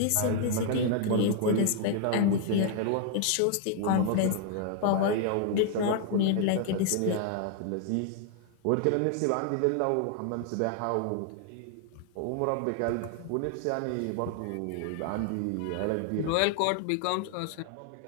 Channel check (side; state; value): both; different; correlation 0.00